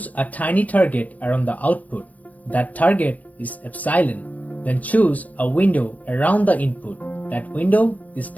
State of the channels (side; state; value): right; late; 0.071 ms